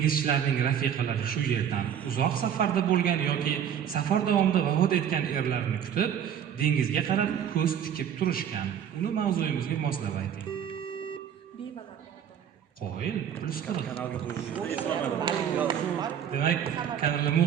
rafiqalari shu yerdan uzoq safarda bo'lgan yoki safar davomida vafot etgan erlarni kutib, dengizga qarab ko'z tikib turishgan. Uni mavzuyimizga moslab ayting. Qo'yil, plus 40. Kanalga qo'ying. Demak, kanalga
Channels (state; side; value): quieter; left; 8.9 dB